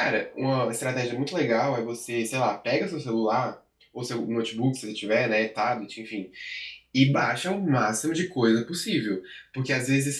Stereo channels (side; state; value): both; identical; correlation 1.00